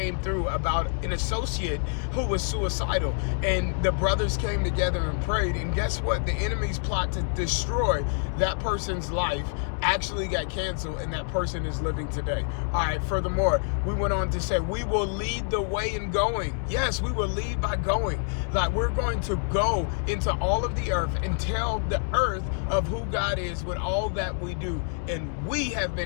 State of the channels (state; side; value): silent; right; 60 dB below the other